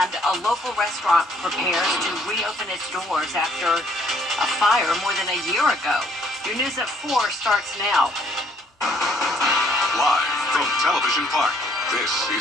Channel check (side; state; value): both; normal; correlation 0.65